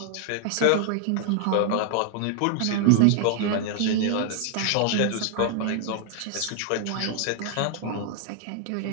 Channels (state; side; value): different; both; correlation 0.00